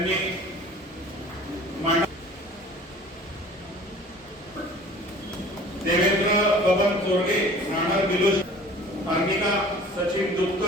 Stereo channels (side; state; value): both; normal; correlation 0.46